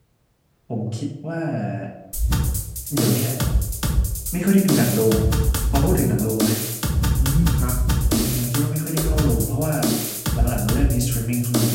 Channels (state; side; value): identical; both; correlation 1.00